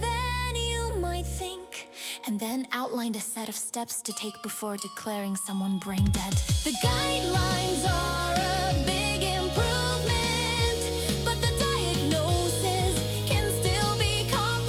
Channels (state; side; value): identical; both; correlation 1.00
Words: you might think, and then outlined a set of steps to take before declaring someone brain dead. The guidelines are a big improvement, but the diagnoses can still be